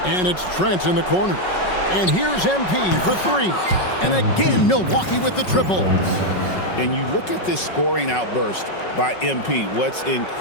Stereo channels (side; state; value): right; late; 5.4 ms